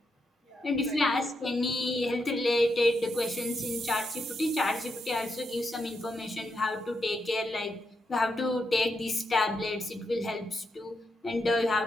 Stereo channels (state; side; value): normal; both; correlation 0.83